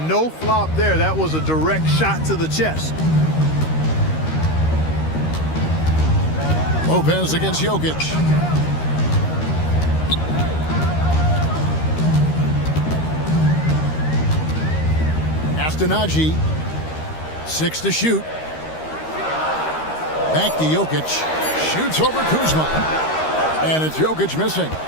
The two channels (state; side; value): late; right; 13 ms